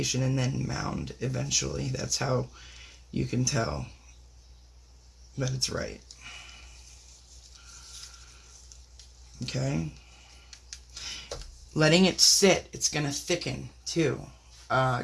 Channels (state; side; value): identical; both; correlation 1.00